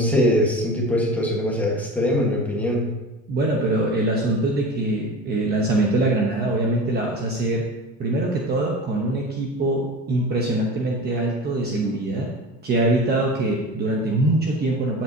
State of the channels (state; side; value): normal; both; correlation 0.33